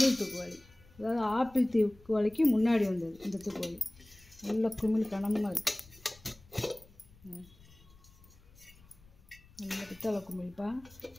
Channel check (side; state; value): left; noise; rumble, 25 dB below the sound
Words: தூக்குவாளி, அதாவது ஆப்பிள் தூக்குவாளிக்கு முன்னாடி வந்தது இந்த தூக்குவாளி. நல்ல குமிழ் கனமாக இருக்குது. நல்ல பித்தளை குமிழ்ப்பா.